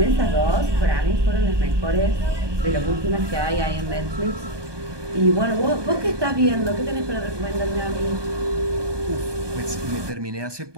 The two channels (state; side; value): late; left; 1.2 ms